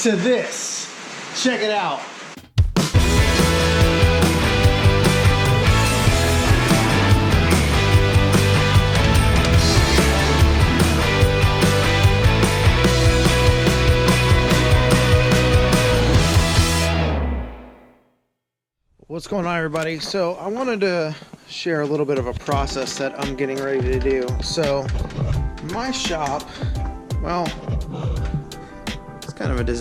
to this. Check it out. What's going on, everybody? So I wanted to share a little bit of a process that I'm getting ready to do. So my shop, well, it's kind of a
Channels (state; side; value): identical; both; correlation 1.00